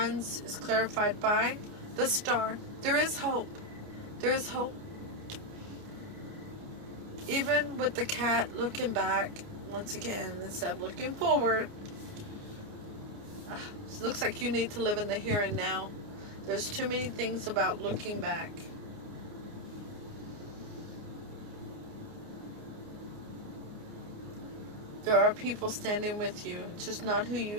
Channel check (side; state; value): left; late; 29 ms